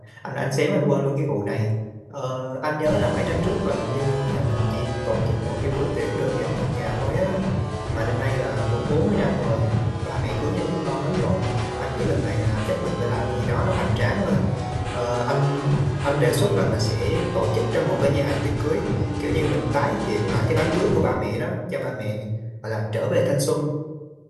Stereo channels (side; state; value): both; identical; correlation 1.00